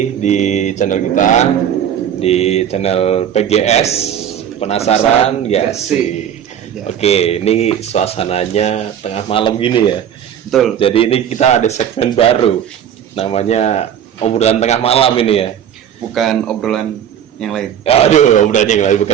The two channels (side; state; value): left; quieter; 9.4 dB